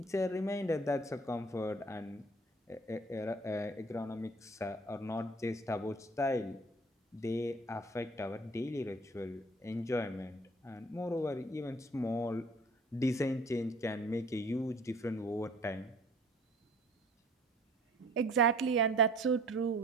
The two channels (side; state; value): both; normal; correlation 0.51